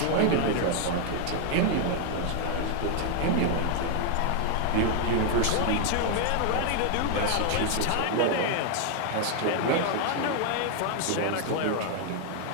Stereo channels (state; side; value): different; both; correlation 0.00